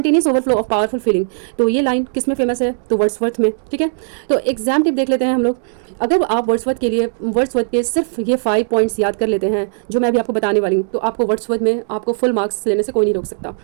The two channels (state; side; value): silent; left; digital silence